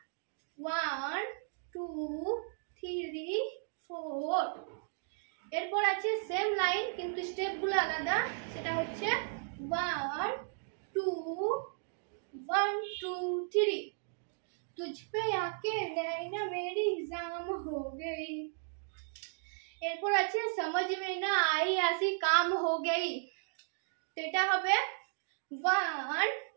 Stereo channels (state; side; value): silent; left; digital silence